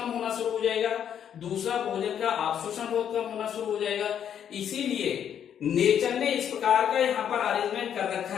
होना शुरू हो जाएगा, दूसरा भोजन का अवशोषण बहुत कम होना शुरू हो जाएगा। इसीलिए नेचर ने इस प्रकार का यहाँ पर अरेंजमेंट कर रखा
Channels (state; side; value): quieter; right; 9.0 dB